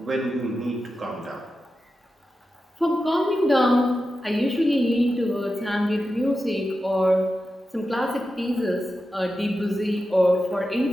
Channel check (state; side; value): normal; both; correlation 0.91